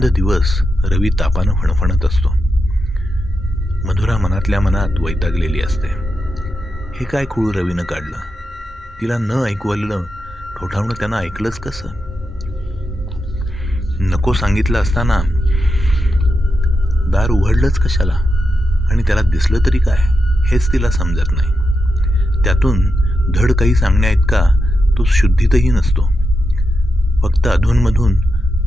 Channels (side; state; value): both; normal; correlation 0.87